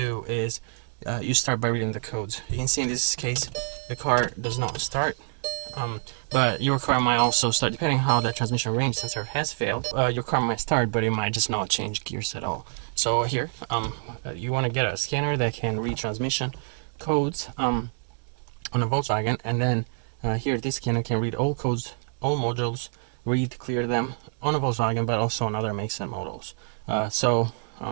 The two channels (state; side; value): silent; left; digital silence